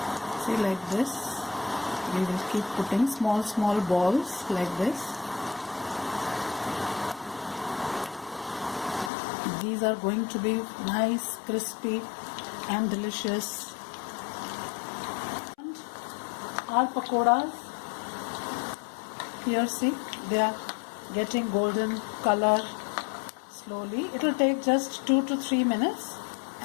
See, like this. We will keep putting small balls like this. These are going to be nice, crispy and delicious. And our pakoras, here see, they are getting golden color slowly. It will take just 2 to 3 minutes,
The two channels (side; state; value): right; drops out; at 9.1 s